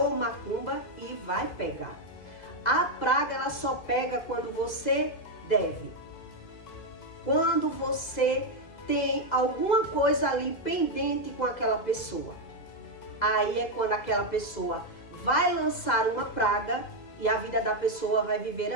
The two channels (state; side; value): late; right; 2.0 ms